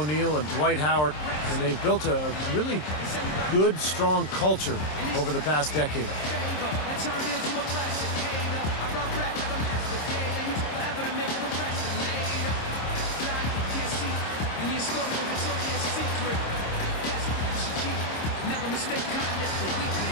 O'Neal and Dwight Howard, and they've built a really good, strong culture over the past decade.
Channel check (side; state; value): right; late; 26 ms